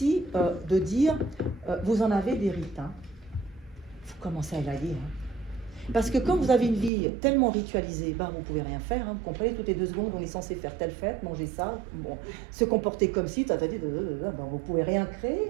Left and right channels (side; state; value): left; drops out; at 6.9 s